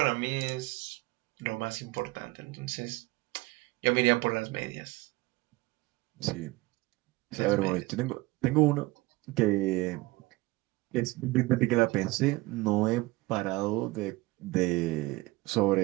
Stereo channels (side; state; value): left; quieter; 21.1 dB